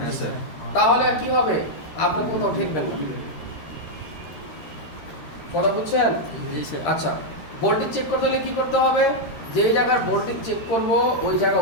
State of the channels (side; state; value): right; late; 13 ms